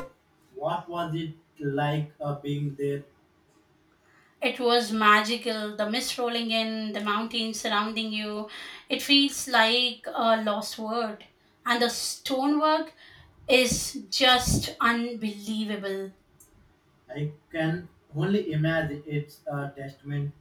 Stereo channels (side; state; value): both; identical; correlation 1.00